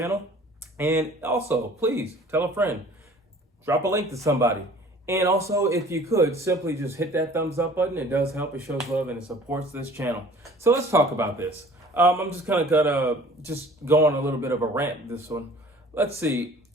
And also, please tell a friend, drop a link to somebody. And also, if you could, simply just hit that thumbs up button. It does help, it shows love, and it supports this channel. So let's talk about this. I'm just kind of gonna just go on a little bit of a rant this one. Let's see.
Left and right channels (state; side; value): normal; both; correlation 0.49